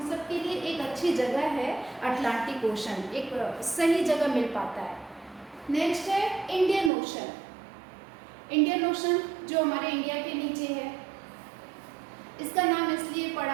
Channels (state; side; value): drops out; left; at 6.9 s